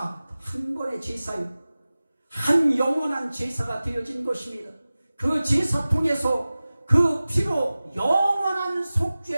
한 번의 제사요, 한 영원한 제사가 되어진 것입니다. 그 제사 통해서 그 피로 영원한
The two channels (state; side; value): inverted; both; correlation -0.97